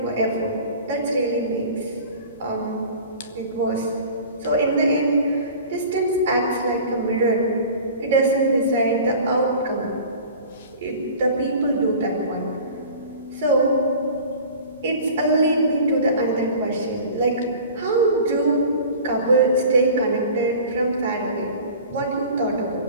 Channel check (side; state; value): both; inverted; correlation -0.41